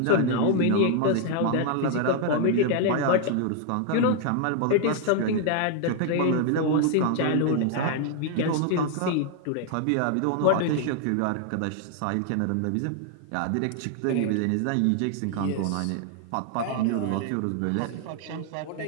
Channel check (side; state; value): both; different; correlation 0.00